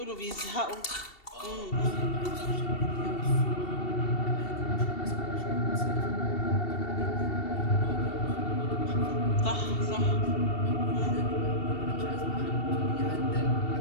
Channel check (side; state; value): right; late; 2.7 ms